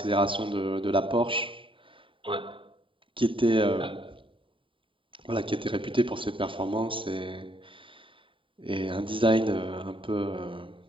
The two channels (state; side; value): late; left; 0.25 ms